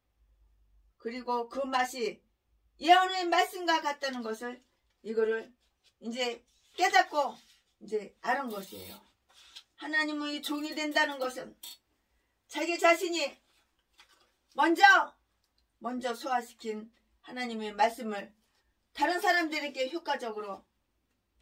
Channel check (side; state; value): both; identical; correlation 1.00